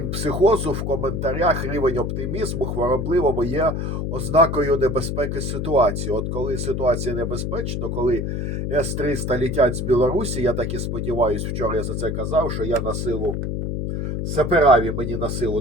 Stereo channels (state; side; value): noise; left; hum, 2 dB below the sound